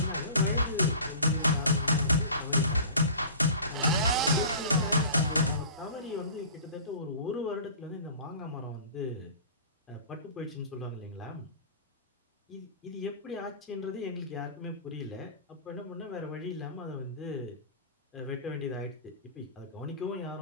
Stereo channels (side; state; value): both; inverted; correlation -0.40